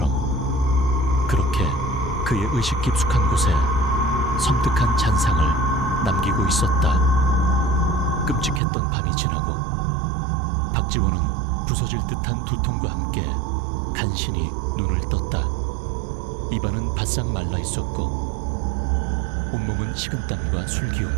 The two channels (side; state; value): left; drops out; at 8.6 s